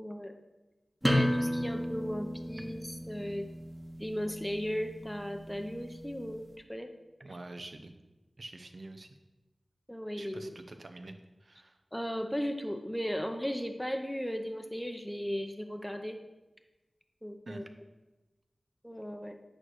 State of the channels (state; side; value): normal; both; correlation 0.98